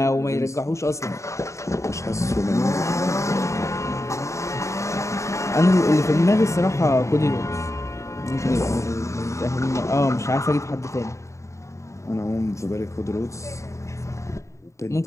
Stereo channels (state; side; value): late; right; 0.14 ms